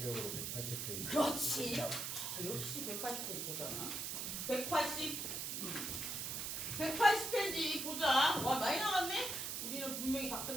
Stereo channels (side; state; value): right; noise; hiss, 3 dB below the sound